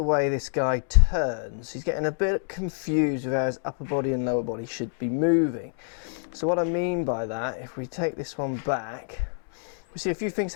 way this guy turns, he's getting a bit confused with how his upper body and lower body should be moving. So what I mean by that, if we take this one back, we see a few things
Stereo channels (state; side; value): silent; right; digital silence